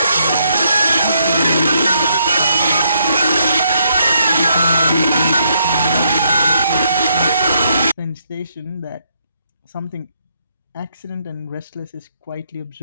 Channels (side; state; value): both; inverted; correlation -0.74